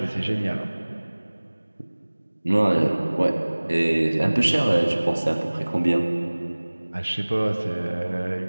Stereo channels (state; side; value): inverted; both; correlation -1.00